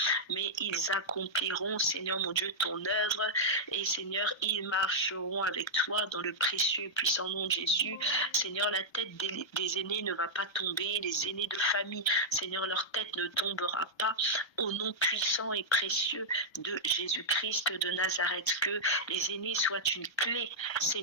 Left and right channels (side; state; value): right; late; 1.3 ms